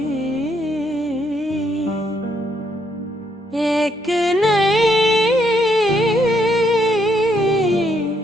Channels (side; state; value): both; normal; correlation 0.73